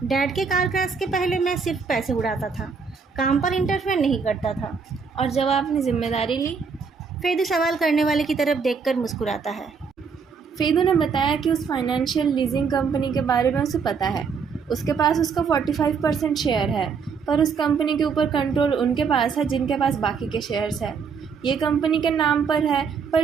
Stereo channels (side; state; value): left; quieter; 5.7 dB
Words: डैड के कार क्रैश के पहले मैं सिर्फ पैसे उड़ाता था, काम पर इंटरफेयर नहीं करता था। और जब आपने जिम्मेदारी ली? फेदू सवाल करने वाले की तरफ देखकर मुस्कुराता है। फेदू ने बताया कि उस फाइनेंशियल लीजिंग कंपनी के बारे में उसे पता है। उसके पास उसका 45% शेयर है, पर उस कंपनी के ऊपर कंट्रोल उनके पास है जिनके पास बाकी के शेयर्स हैं। ये कंपनी के नाम पर है, पर